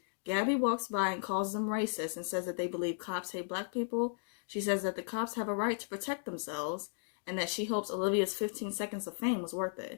Gabby walks by and calls them racist and says that they believe cops hate Black people. She says that the cops have a right to protect themselves, and that she hopes Olivia's 15 seconds of fame was worth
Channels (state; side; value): silent; right; digital silence